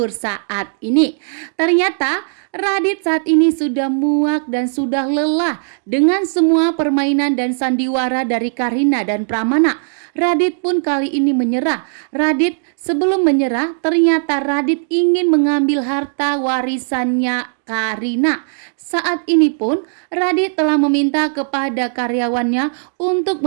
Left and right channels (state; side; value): silent; left; digital silence